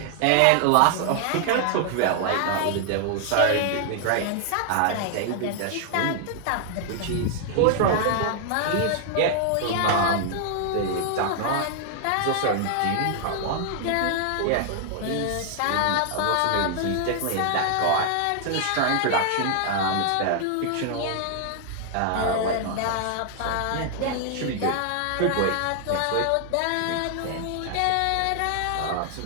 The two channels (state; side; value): different; both; correlation 0.00